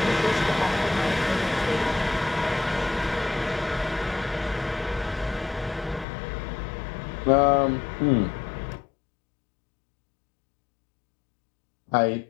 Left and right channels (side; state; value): right; drops out; at 6.1 s